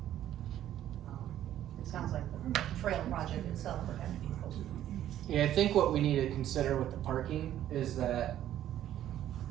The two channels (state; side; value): quieter; left; 11.9 dB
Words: it sounds like the trail project itself would have to be closer. Yeah, I think what we need to consider with the parking is that